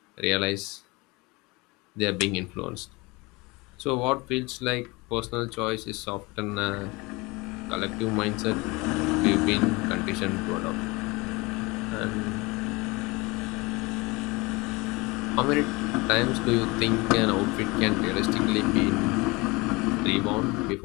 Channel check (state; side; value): quieter; right; 24.6 dB